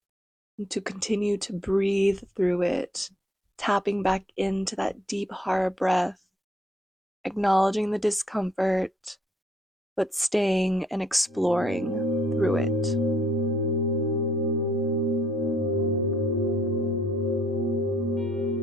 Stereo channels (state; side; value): normal; both; correlation 0.67